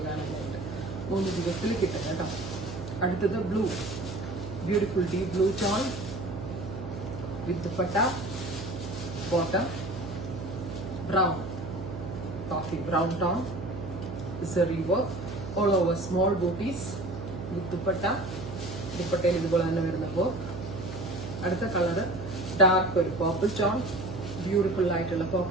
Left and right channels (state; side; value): noise; right; hum, 8 dB below the sound